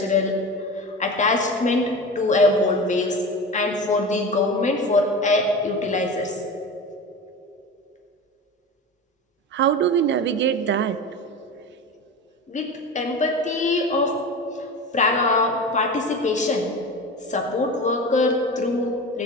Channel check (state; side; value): normal; both; correlation 0.29